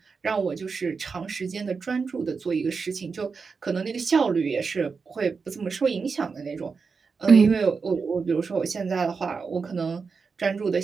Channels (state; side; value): quieter; left; 5.0 dB